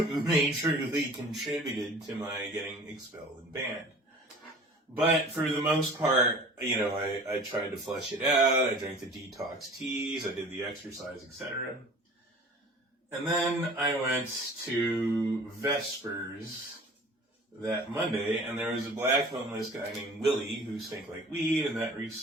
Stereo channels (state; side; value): normal; both; correlation 0.44